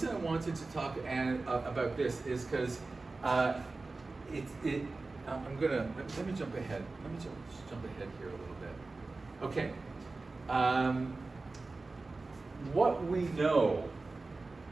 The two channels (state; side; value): quieter; left; 3.6 dB